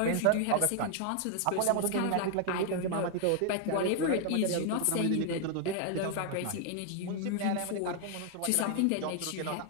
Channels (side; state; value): both; different; correlation 0.00